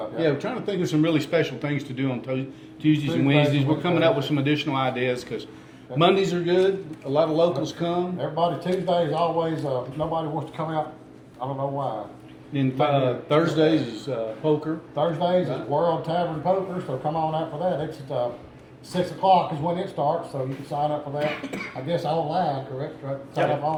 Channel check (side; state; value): both; identical; correlation 1.00